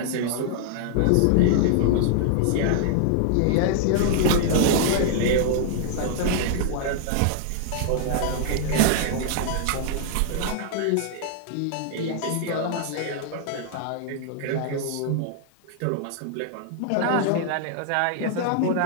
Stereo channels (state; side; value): different; both; correlation -0.01